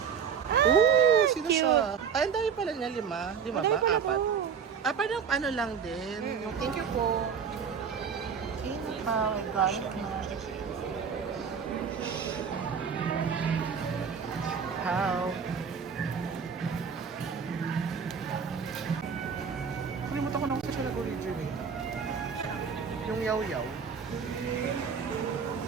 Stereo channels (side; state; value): left; quieter; 6.7 dB